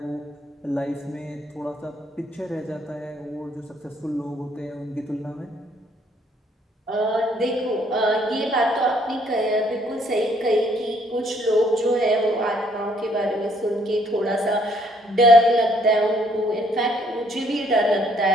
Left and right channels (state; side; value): normal; both; correlation 0.66